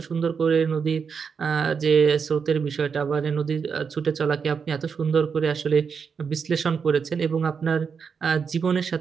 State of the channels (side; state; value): left; quieter; 6.1 dB